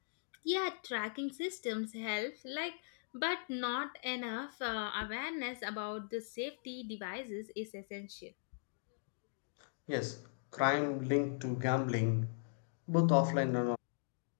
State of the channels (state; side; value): silent; right; digital silence